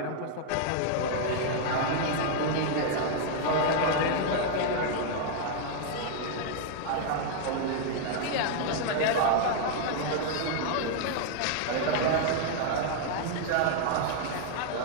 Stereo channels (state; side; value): different; both; correlation 0.00